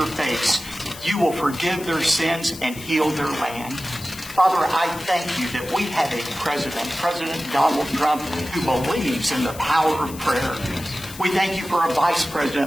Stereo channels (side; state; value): left; noise; hiss, 15 dB below the sound